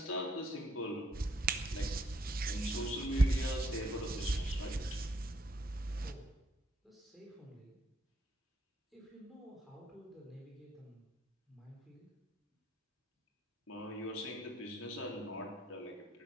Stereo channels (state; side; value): normal; both; correlation 0.71